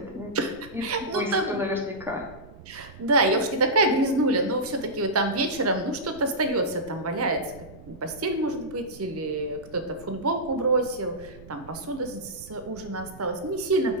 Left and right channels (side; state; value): right; noise; rumble, 19 dB below the sound